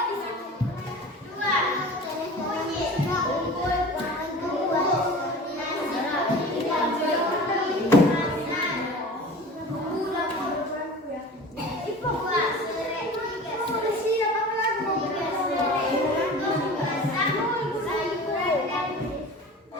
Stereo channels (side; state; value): both; normal; correlation 0.38